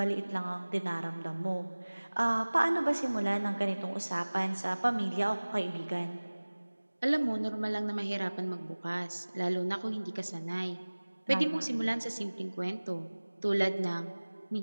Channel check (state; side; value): inverted; both; correlation -1.00